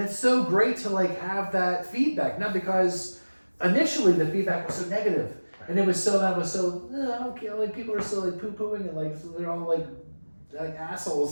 it's so great to like have that feedback. Not because initially the feedback was so negative, and it was so I don't care. Like people are still like poo pooing and like they're all like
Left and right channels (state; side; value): inverted; both; correlation -1.00